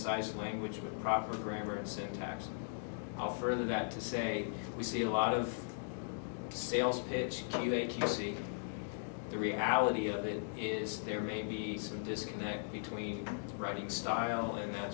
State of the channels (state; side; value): silent; right; digital silence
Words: language with proper grammar and syntax? I'll further that to say, we see a lot of sales pitch, QA, QC. The reality of it is there may be some disconnect between writing style and that